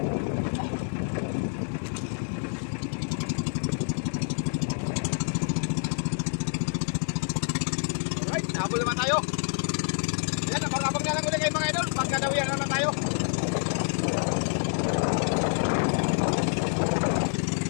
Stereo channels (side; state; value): right; silent; 57 dB below the other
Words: Habol naman tayo. Yan, abang-abang na lang ulit kayo mga idol. Pagkadawian naman tayo.